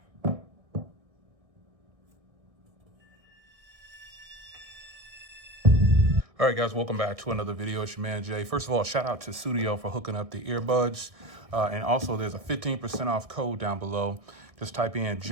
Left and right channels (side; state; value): left; late; 1.6 ms